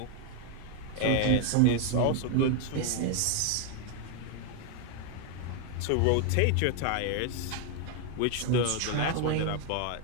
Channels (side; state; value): both; different; correlation 0.00